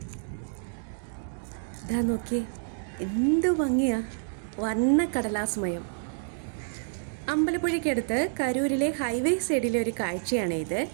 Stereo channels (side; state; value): left; silent; digital silence